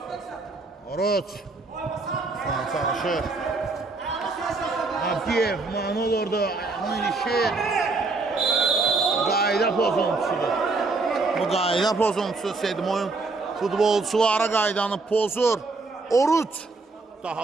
Oruc. İsmail çalışır. Abdiyev, mani olurdu. Ayağına ilişir. Qayda pozuntusudur. Bu qayda pozuntusu Sedmoyun futbolçulara qaydanı pozur. Oruc.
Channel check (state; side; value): quieter; left; 3.7 dB